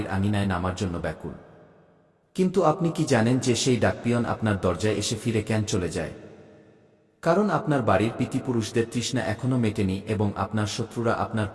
আঙিনায় নামার জন্য ব্যাকুল। কিন্তু আপনি কি জানেন যে সেই ডাকপিয়ন আপনার দরজায় এসে ফিরে কেন চলে যায়? কারণ আপনার বাড়ির পিতৃপুরুষদের তৃষ্ণা এখনো মেটেনি এবং আপনার শত্রুরা আপনার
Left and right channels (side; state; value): both; identical; correlation 1.00